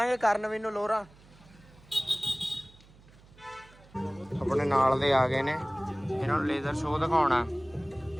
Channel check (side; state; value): right; noise; hum, 25 dB below the sound